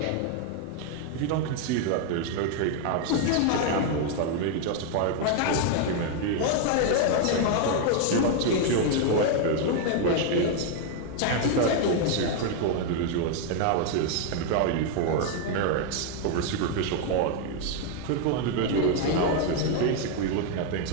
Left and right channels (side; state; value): both; different; correlation 0.00